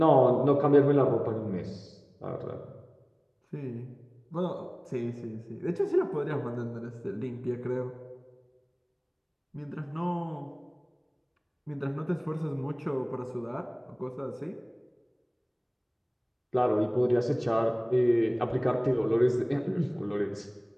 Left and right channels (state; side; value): identical; both; correlation 1.00